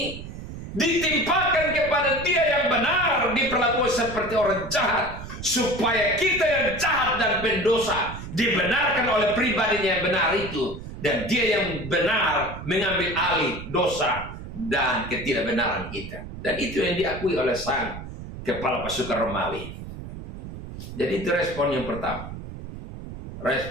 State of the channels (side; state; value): right; noise; rumble, 11 dB below the sound